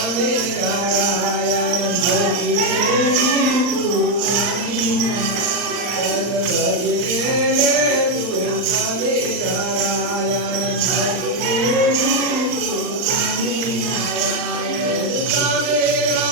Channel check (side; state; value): left; late; 39 ms